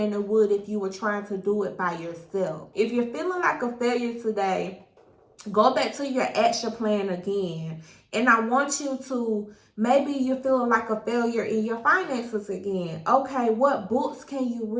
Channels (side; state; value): both; identical; correlation 1.00